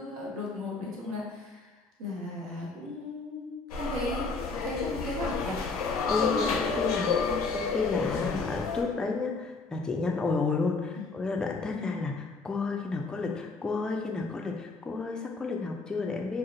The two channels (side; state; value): right; quieter; 3.9 dB